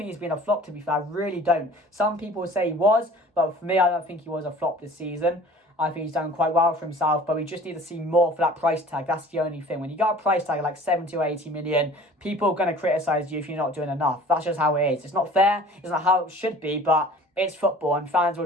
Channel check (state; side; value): normal; both; correlation 0.46